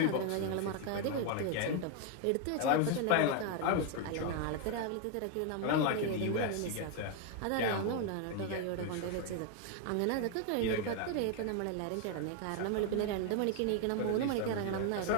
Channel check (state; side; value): different; both; correlation 0.01